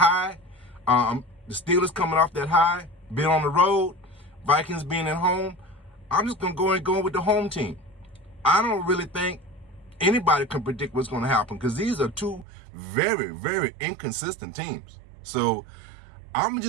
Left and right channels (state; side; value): drops out; left; at 12.5 s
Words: the Steelers coming off that high, being on the road, Vikings being at home, I'm just going to go with the home team. I don't really think anybody can predict what's going to happen because these are two very, very inconsistent teams. So I'm